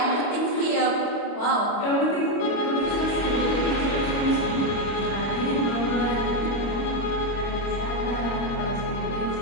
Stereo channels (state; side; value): late; right; 25 ms